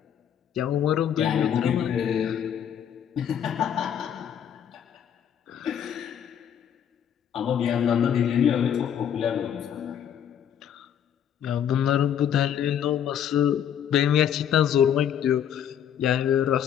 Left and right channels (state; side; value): quieter; right; 9.2 dB